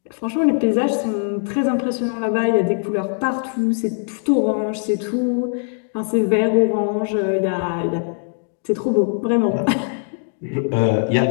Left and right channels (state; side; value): silent; right; 63 dB below the other